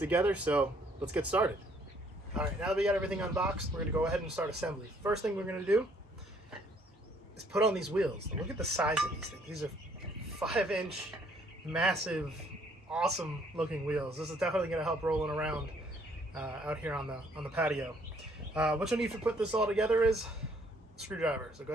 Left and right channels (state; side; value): normal; both; correlation 0.64